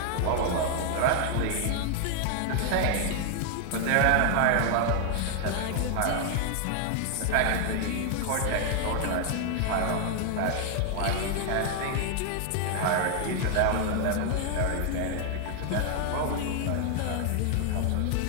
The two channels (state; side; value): different; both; correlation 0.00